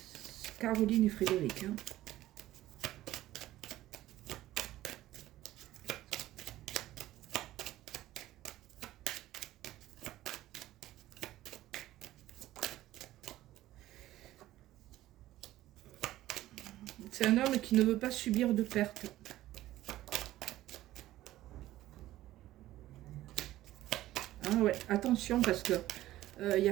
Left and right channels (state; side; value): quieter; left; 15.1 dB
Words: Caroline et Frédéric. Hein. C'est un homme qui ne veut pas subir de pertes. Ah ouais, attention parce que il y